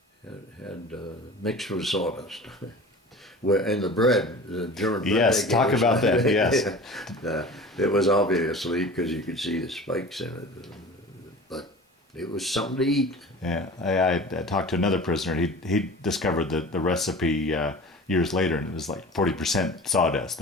had mixed with sawdust. And the bread, the German bread. Yes, talk about that, yes. It was obviously, because you could see the spikes in it, but it was something to eat. Yeah, I talked to another prisoner. He discovered the recipe years later, and it was like 40% sawdust,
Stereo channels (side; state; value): both; normal; correlation 0.38